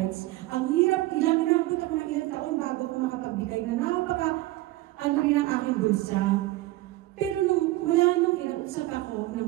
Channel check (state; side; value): quieter; left; 18.0 dB